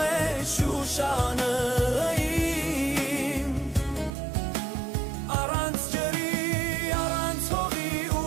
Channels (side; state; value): left; drops out; at 4.1 s